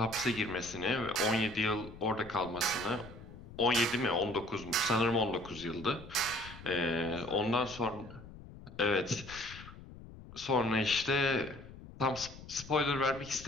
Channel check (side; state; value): left; noise; rumble, 16 dB below the sound